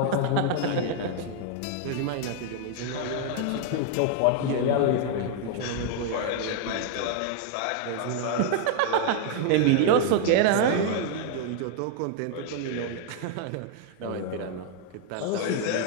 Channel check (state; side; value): different; both; correlation 0.00